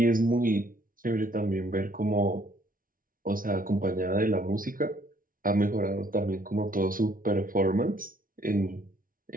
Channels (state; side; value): late; left; 0.40 ms